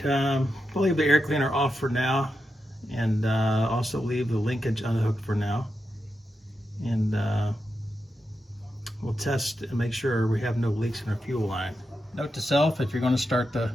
we'll leave the air cleaner off for now, and also leave the linkage unhooked for now. And we'll test and make sure we have no leaks in our fuel line. Note to self, if you're going to start the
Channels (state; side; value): normal; both; correlation 0.88